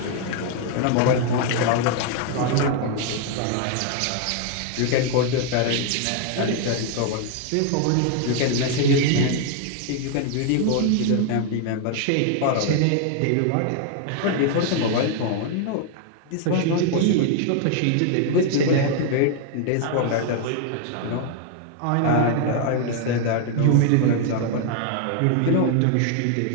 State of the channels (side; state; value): both; different; correlation 0.00